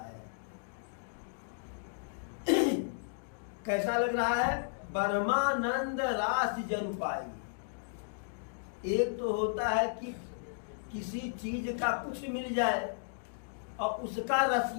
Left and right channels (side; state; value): right; silent; digital silence